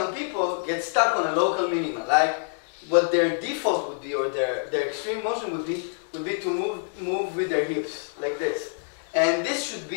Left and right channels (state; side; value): silent; right; 61 dB below the other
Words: people get stuck on a local minima, like what their default would be, or their extreme motion would be to move with their hips, like this. And this should